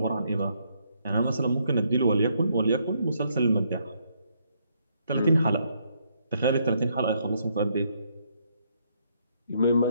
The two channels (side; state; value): both; inverted; correlation -0.73